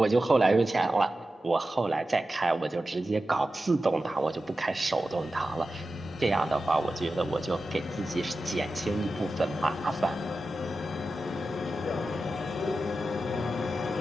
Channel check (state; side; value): normal; both; correlation 0.93